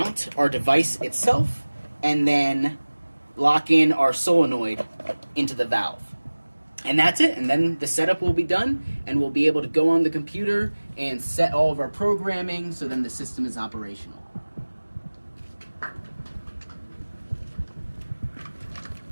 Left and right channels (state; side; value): inverted; both; correlation -1.00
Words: our device itself and then lock in our solenoid into the valve. And that's it. And then the setup will be done and we'll be able to go on the computer and set all of our programming so then the system is operational.